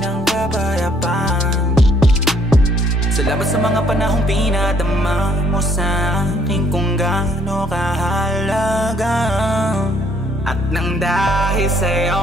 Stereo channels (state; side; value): normal; both; correlation 0.64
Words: ang kapayapaan. Salamat sa mga panahong pinadama mo sa akin kung gaano kahalaga. At nang dahil